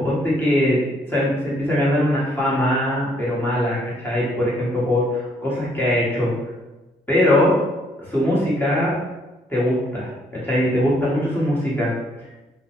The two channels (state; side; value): normal; both; correlation 0.68